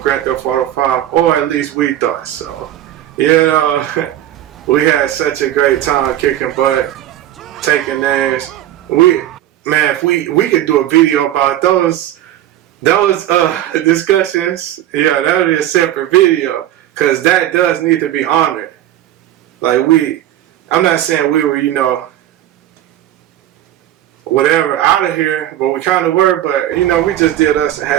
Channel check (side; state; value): left; quieter; 12.7 dB